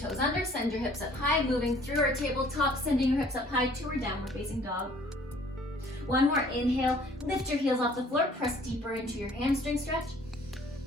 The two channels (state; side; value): normal; both; correlation 0.56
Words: under, send your hips up high, moving through our tabletop, sending your hips up high to our downward facing dog. One more, inhale, lift your heels off the floor, press deeper into your hamstring stretch.